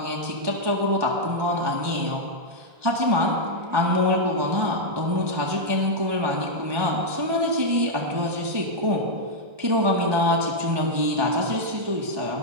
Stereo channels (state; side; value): late; left; 1.2 ms